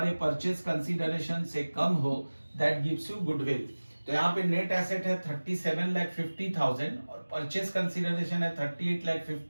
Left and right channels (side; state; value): both; inverted; correlation -1.00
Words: परचेस कंसीडरेशन से कम हो दैट गिव्स यू गुडविल। तो यहाँ पे नेट एसेट है 37,50,000 और परचेस कंसीडरेशन है